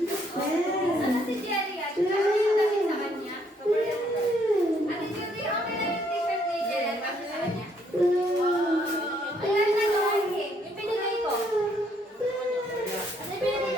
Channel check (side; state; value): both; normal; correlation 0.69